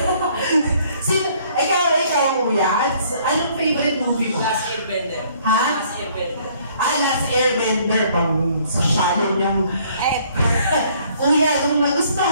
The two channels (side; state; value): both; inverted; correlation -0.61